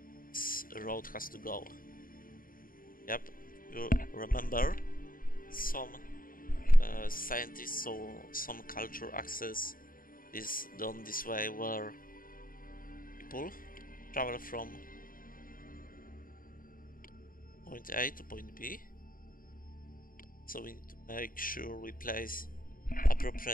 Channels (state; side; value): late; right; 0.41 ms